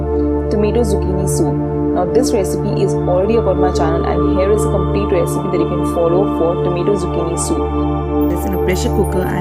tomato zucchini soup. Now this recipe is already up on my channel, and here is a complete recipe that you can follow for tomato zucchini soup. This in a pressure cooker,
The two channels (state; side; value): identical; both; correlation 1.00